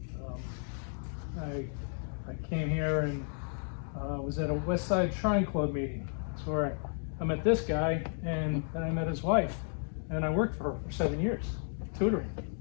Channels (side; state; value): right; silent; 56 dB below the other